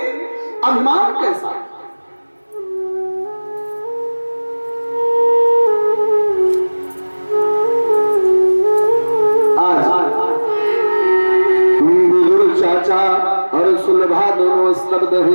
अभिमान कैसा है? चाचा और सुलभा दोनों स्तब्ध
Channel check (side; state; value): both; inverted; correlation -1.00